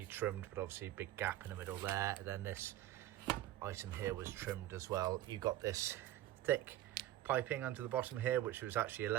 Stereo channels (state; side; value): quieter; left; 13.7 dB